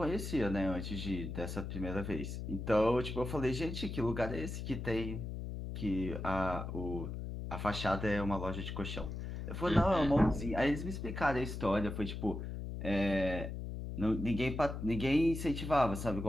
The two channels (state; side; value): noise; left; hum, 6 dB below the sound